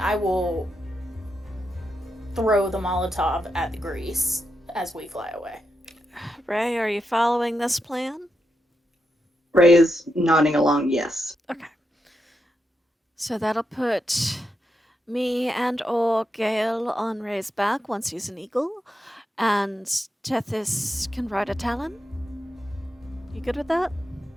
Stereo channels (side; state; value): both; normal; correlation 0.85